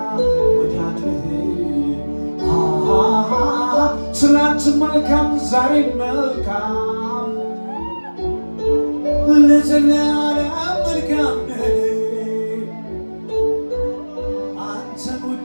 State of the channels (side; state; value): both; inverted; correlation -1.00